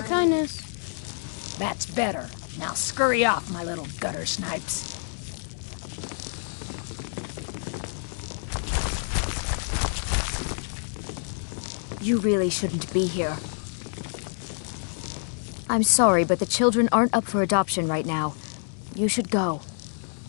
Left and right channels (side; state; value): right; silent; digital silence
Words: That's better. Now scurry off, my little gutter snipes. You really shouldn't be here. I'm sorry, but the children aren't up for adoption right now. You should go.